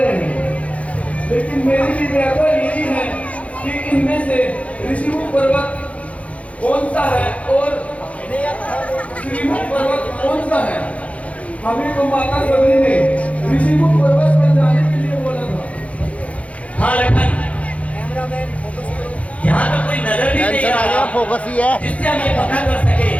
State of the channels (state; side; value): late; right; 0.065 ms